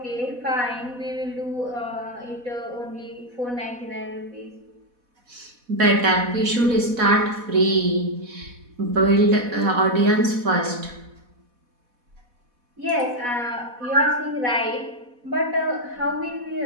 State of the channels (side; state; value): left; late; 4.1 ms